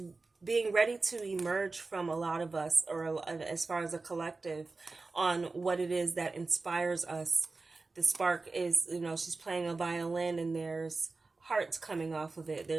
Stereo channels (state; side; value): quieter; left; 3.7 dB